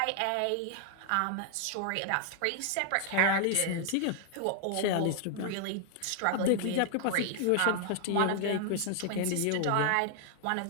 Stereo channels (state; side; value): different; both; correlation 0.00